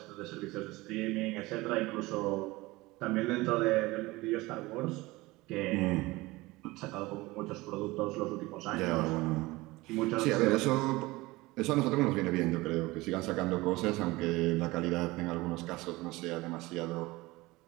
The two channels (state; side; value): quieter; left; 20.9 dB